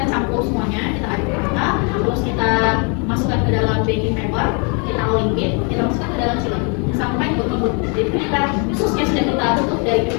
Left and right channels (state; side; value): quieter; right; 35.7 dB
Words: campur semuanya, kita aduk rata, terus kita masukkan ke dalam baking paper, kita limpit, kita masukkan ke dalam chiller sampai berlembut. Jadi kita susnya sudah kita tutup dari